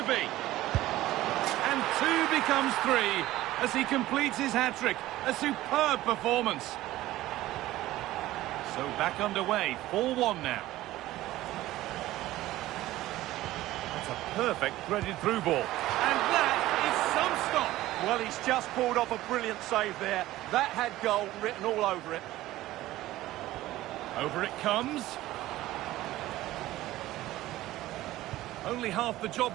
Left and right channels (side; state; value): left; quieter; 16.0 dB